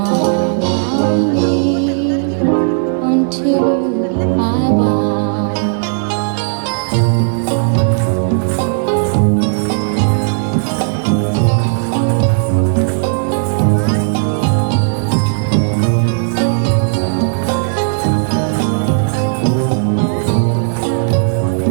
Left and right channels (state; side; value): silent; left; 70 dB below the other